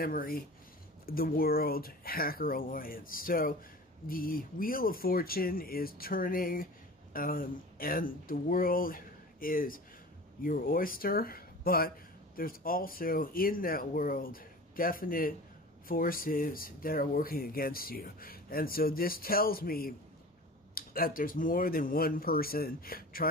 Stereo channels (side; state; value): both; normal; correlation 0.37